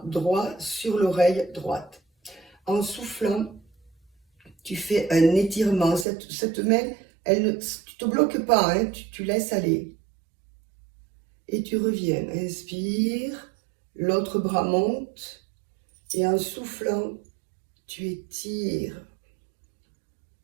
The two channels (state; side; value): drops out; left; at 6.1 s